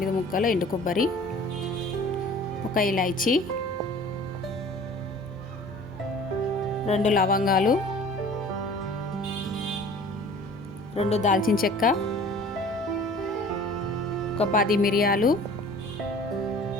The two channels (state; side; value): normal; both; correlation 0.46